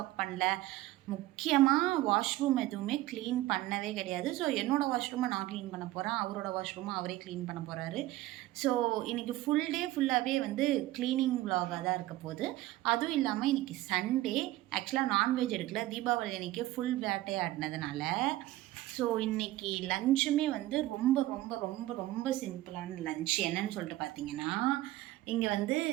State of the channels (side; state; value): left; quieter; 16.5 dB